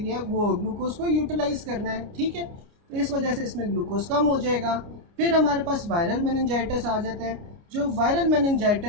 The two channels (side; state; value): left; late; 29 ms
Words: वो ग्लूकोज को यूटिलाइज करना है, ठीक है। तो इस वजह से इसमें ग्लूकोज कम हो जाएगा। फिर हमारे पास वायरल मेनिंजाइटिस आ जाता है, जो वायरल